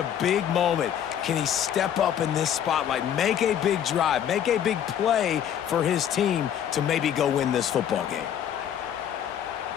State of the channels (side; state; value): right; quieter; 9.6 dB